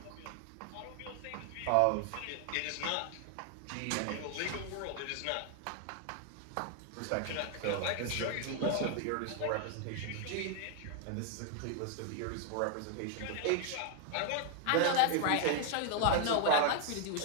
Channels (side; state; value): both; different; correlation 0.00